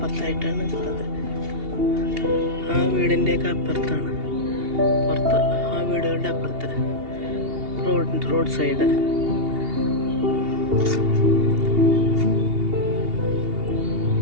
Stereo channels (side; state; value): left; late; 2.8 ms